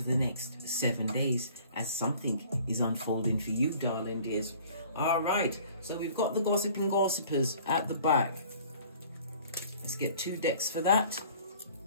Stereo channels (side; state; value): both; inverted; correlation -0.51